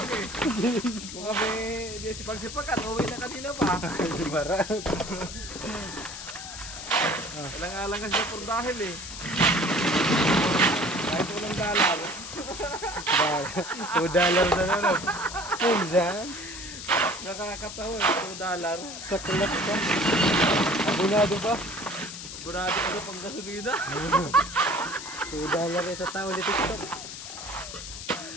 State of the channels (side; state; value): left; noise; hiss, 10 dB below the sound